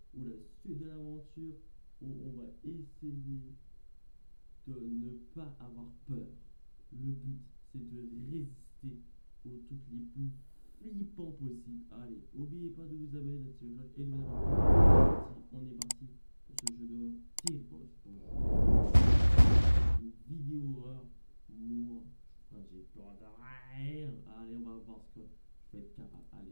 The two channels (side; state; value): both; inverted; correlation -1.00